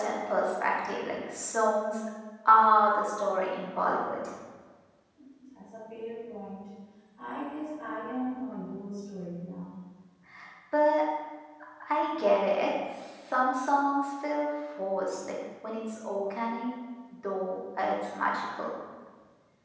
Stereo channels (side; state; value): both; identical; correlation 1.00